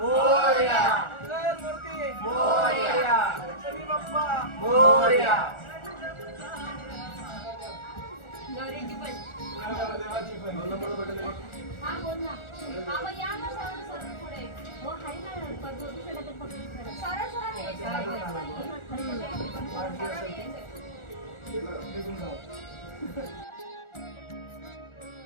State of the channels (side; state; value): right; late; 1.4 ms